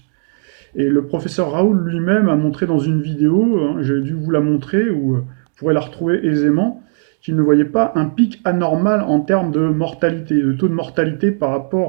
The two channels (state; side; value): silent; left; digital silence